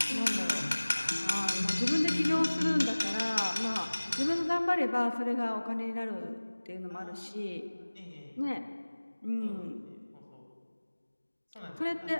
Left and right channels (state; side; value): inverted; both; correlation -1.00